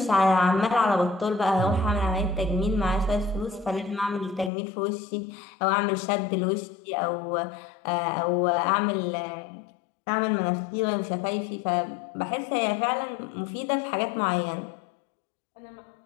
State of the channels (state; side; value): drops out; right; at 4.5 s